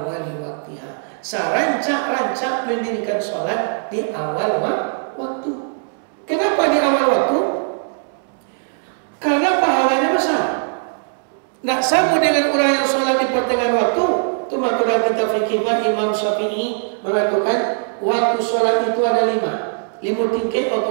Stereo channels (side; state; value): left; silent; 66 dB below the other